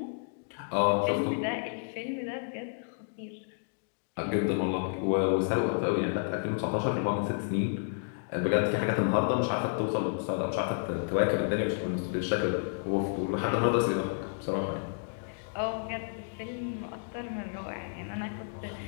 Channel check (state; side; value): silent; right; digital silence